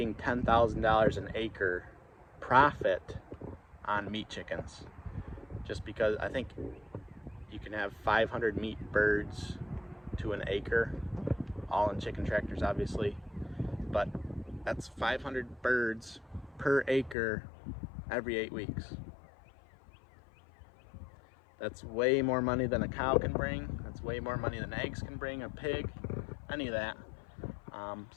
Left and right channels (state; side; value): drops out; right; at 17.2 s